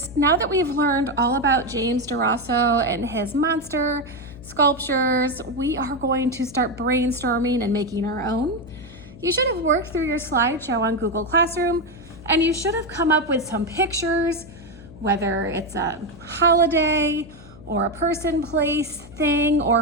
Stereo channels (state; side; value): noise; left; hum, 17 dB below the sound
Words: Now that we've learned all about James DeRosso and his monster sculptures, we are going to start brainstorming and making our own. You should have worked through your slideshow on Google Classroom, and you should have come up with some pictures, whether it's a holiday or a person, place, thing,